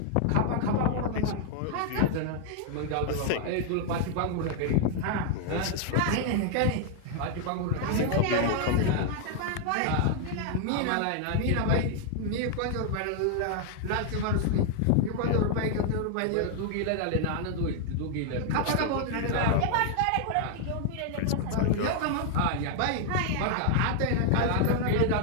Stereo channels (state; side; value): different; both; correlation 0.00